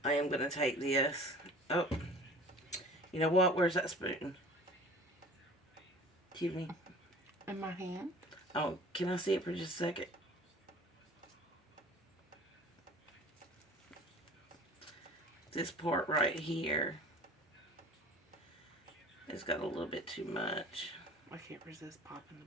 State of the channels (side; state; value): both; normal; correlation 0.43